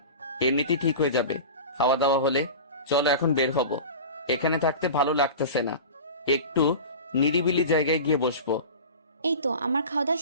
এমনিতেই ঠিক হয়ে যাবে খাওয়া দাওয়া হলে। চলো এখন বের হব, এখানে থাকতে ভালো লাগতেছে না, একটু নিরিবিলি জায়গায় গিয়ে বসবো। এই তো আমার খাওয়া দাওয়া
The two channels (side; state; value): both; inverted; correlation -0.33